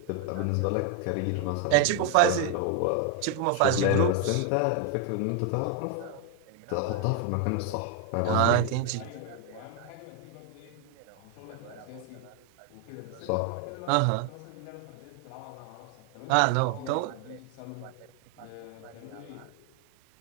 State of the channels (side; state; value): both; different; correlation 0.01